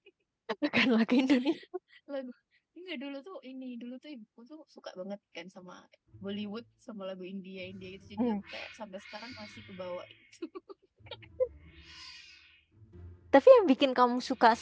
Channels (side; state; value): both; identical; correlation 1.00